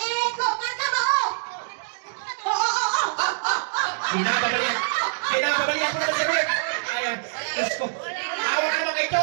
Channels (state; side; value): silent; left; digital silence